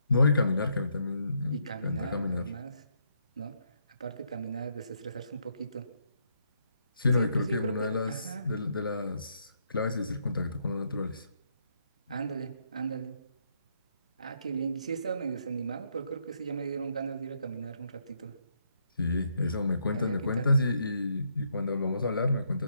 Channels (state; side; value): inverted; both; correlation -0.75